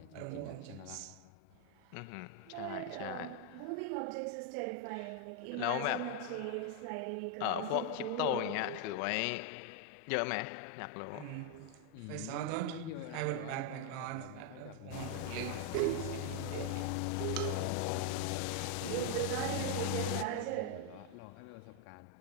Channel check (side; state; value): both; different; correlation 0.01